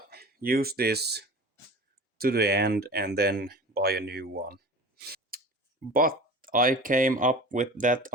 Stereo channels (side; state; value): both; normal; correlation 0.37